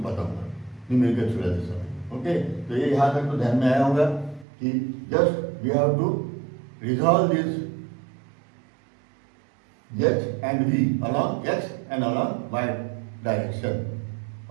न्यूमेरिकल छुड़ाते समय। ओके, तो ये यहाँ तक तो ध्यान में आया होगा कि just we have to resolve this h and v along x and along y direction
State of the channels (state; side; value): drops out; left; at 4.5 s